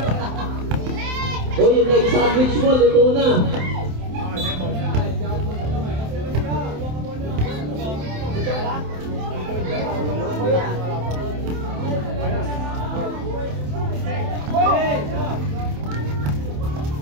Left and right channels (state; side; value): late; left; 27 ms